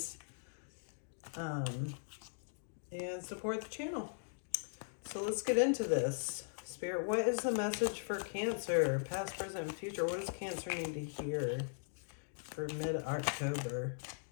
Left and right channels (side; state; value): right; silent; digital silence